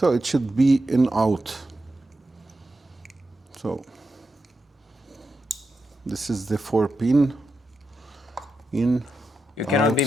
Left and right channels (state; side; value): normal; both; correlation 0.88